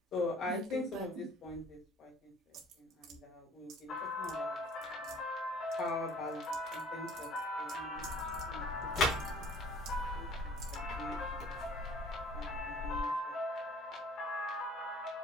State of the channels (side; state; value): both; normal; correlation 0.51